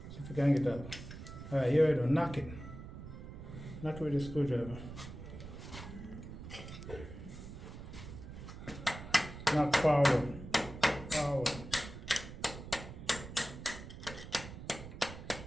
See if you can get it out. Alright, here we go. Knock it. Knock it with a screwdriver. Knock forward. Forward.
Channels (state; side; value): noise; right; rumble, 11 dB below the sound